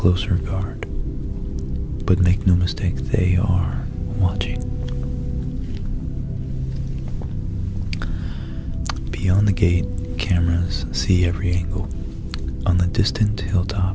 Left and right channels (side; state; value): both; identical; correlation 1.00